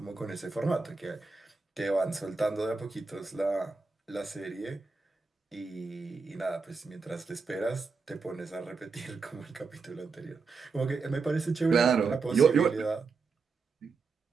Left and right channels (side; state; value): left; quieter; 4.5 dB